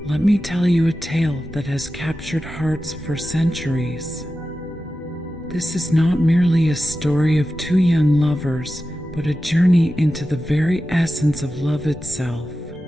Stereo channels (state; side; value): normal; both; correlation 0.93